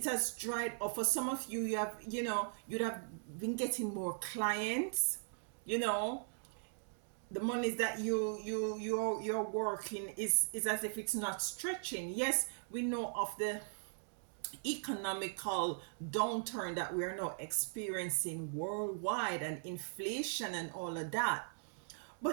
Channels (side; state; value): left; silent; digital silence